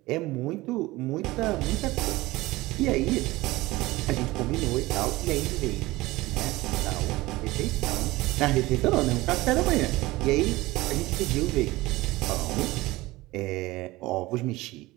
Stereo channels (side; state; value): left; quieter; 19.6 dB